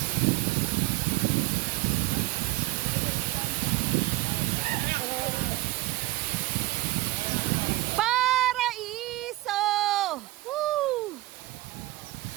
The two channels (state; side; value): quieter; left; 19.1 dB